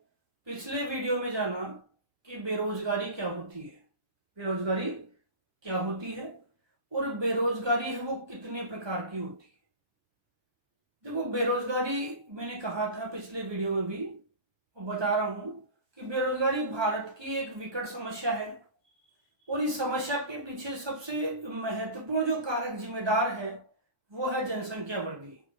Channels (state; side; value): late; left; 1.2 ms